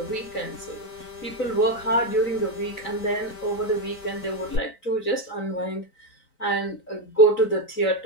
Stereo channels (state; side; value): late; right; 4.5 ms